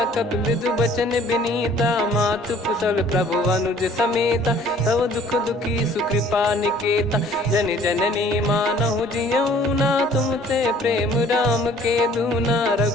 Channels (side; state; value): both; normal; correlation 0.55